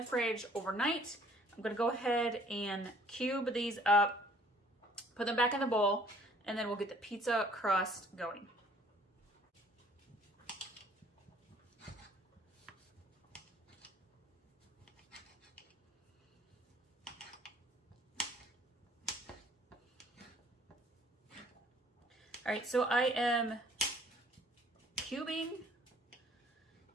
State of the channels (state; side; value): normal; both; correlation 0.57